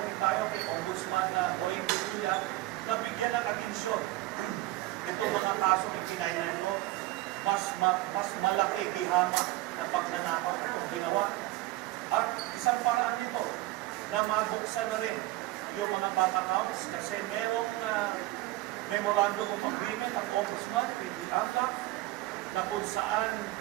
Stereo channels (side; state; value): left; quieter; 18.3 dB